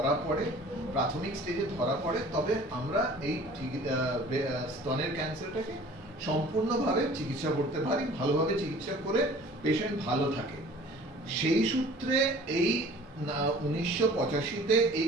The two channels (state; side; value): normal; both; correlation 0.48